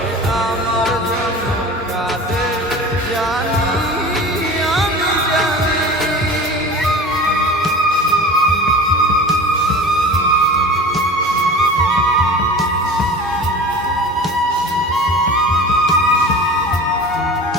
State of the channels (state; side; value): normal; both; correlation 0.36